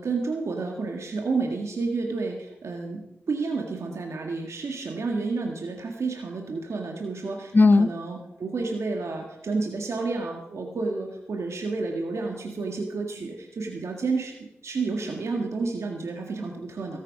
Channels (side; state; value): both; normal; correlation 0.87